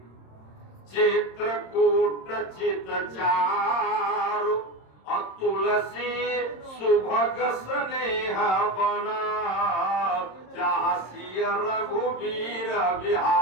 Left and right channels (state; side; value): late; right; 26 ms